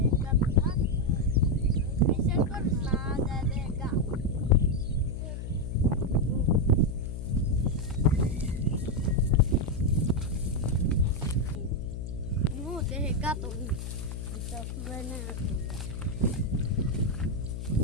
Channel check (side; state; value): left; noise; hum, 6 dB below the sound